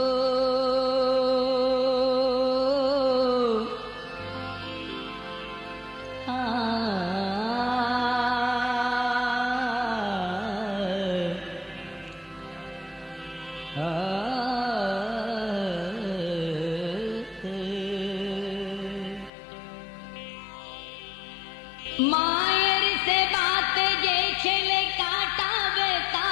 মায়ের সে বাত যে ছেলে কাটাবে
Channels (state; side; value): drops out; right; at 19.3 s